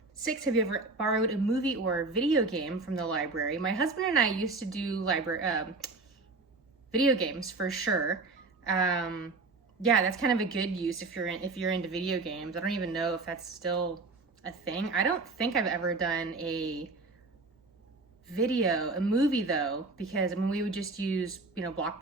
6, have you ever borrowed a movie or a video game from the library? My husband and I used to do video games for sure. Yeah, that's kind of a good use if you're into video games. I don't even know if that's still a thing. I don't think I've ever done a movie though, because we would just use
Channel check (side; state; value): left; quieter; 3.6 dB